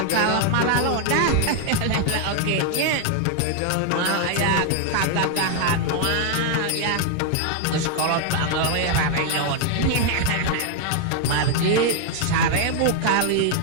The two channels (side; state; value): both; different; correlation 0.00